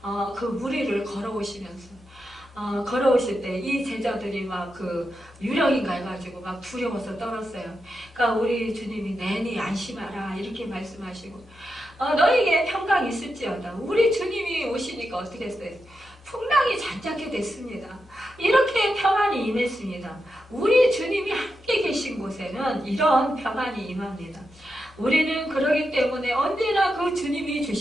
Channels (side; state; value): both; normal; correlation 0.87